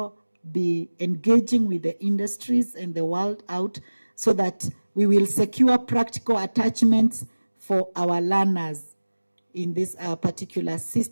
be engaging with the industries and the world out so that we will secure practical attachments for our learners in this particular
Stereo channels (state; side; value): inverted; both; correlation -1.00